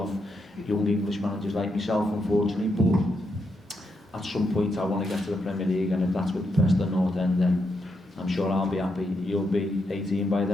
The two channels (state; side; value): normal; both; correlation 0.82